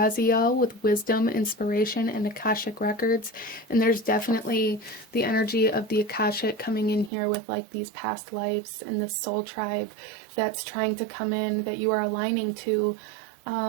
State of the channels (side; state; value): left; drops out; at 7.1 s